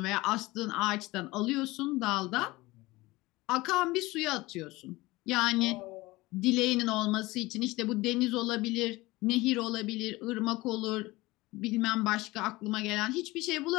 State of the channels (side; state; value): right; quieter; 20.5 dB